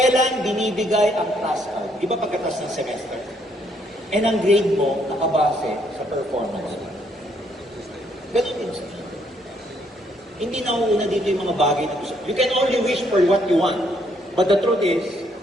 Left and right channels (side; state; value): both; normal; correlation 0.70